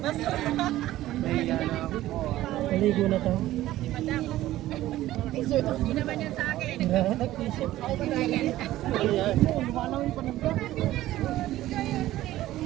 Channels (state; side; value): quieter; left; 15.1 dB